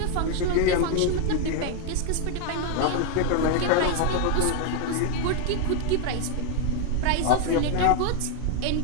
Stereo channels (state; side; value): different; both; correlation 0.01